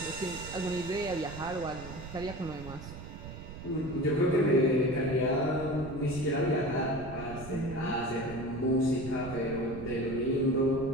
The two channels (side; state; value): right; noise; rumble, 11 dB below the sound